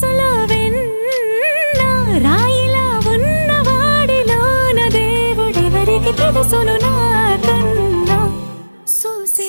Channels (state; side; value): inverted; both; correlation -1.00